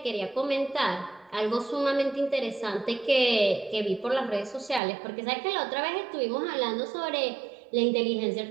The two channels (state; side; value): drops out; left; at 4.8 s